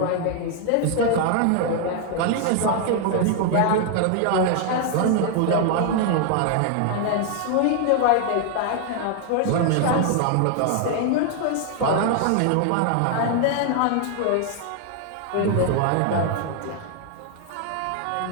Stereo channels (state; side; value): different; both; correlation 0.00